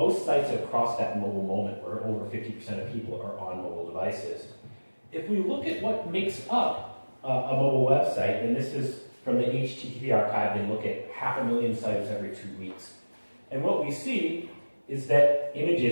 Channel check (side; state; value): both; inverted; correlation -1.00